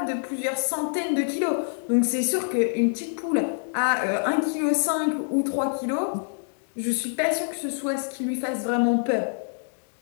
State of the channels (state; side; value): silent; right; digital silence